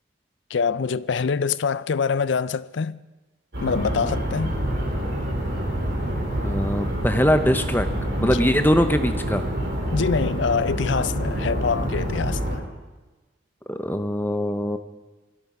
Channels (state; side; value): normal; both; correlation 0.51